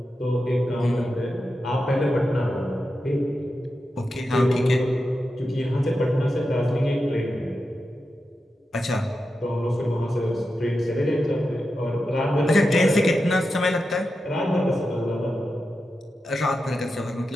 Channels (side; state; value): both; normal; correlation 0.89